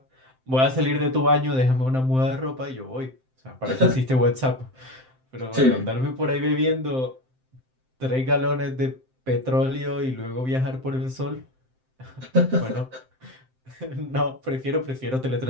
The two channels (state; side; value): late; left; 7.7 ms